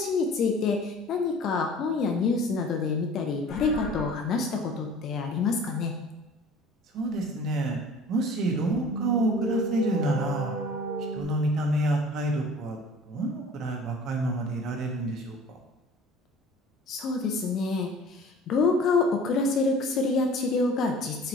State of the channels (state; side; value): normal; both; correlation 0.45